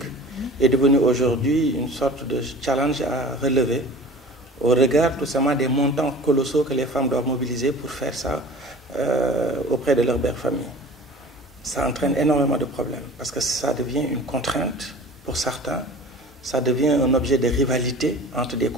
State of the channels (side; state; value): both; normal; correlation 0.42